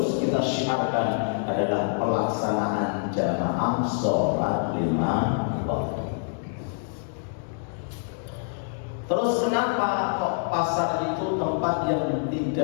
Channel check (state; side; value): silent; right; 61 dB below the other